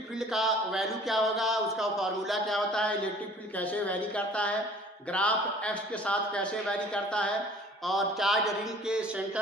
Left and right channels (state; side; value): normal; both; correlation 0.51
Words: फील्ड का वैल्यू क्या होगा, उसका फॉर्मूला क्या होता है, इलेक्ट्रिक फील्ड कैसे वैरी करता है, ग्राफ एक्स के साथ कैसे वैरी करता है, और चार्ज रिंग के